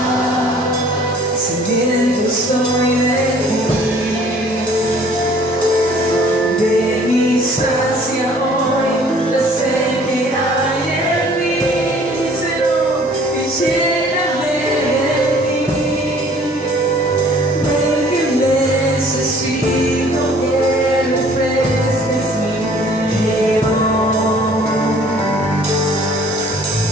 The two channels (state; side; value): normal; both; correlation 0.55